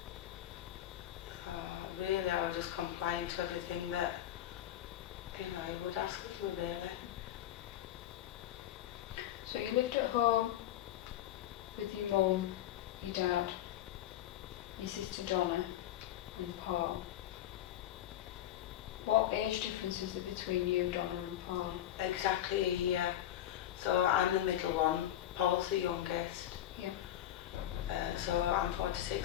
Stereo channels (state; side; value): quieter; right; 12.2 dB